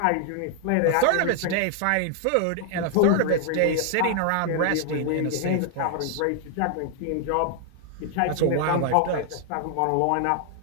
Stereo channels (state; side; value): different; both; correlation 0.00